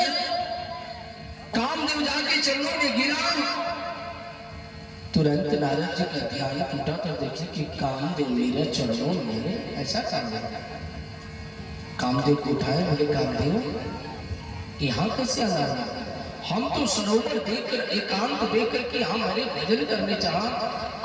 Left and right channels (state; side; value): identical; both; correlation 1.00